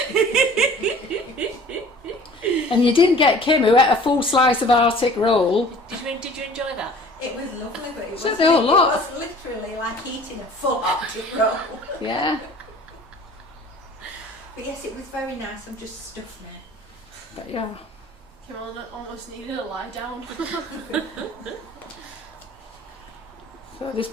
And you didn't get Kim, who ate a full slice of Arctic roll. Did you enjoy that? It was lovely, but it was, So the whole lot. it was literally like eating a full Arctic roll. Yeah, But yes, it was very nice. I'm just stuffed now. but yeah. Kim almost needed a lie down. So this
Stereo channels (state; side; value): normal; both; correlation 0.48